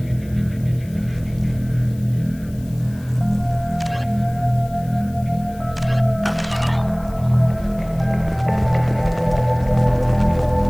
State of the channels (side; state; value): left; noise; hiss, 25 dB below the sound